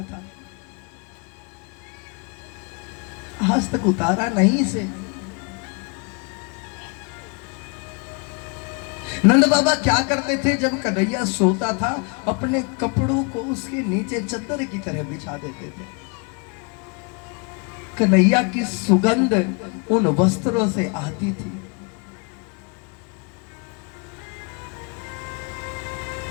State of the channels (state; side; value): quieter; right; 34.1 dB